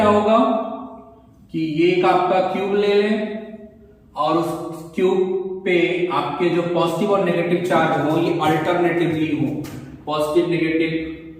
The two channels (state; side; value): identical; both; correlation 1.00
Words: होगा कि ये एक आपका क्यूब ले लें और उस क्यूब पे आपके जो पॉजिटिव और नेगेटिव चार्ज हो ये अल्टरनेटिवली हो, positive negative,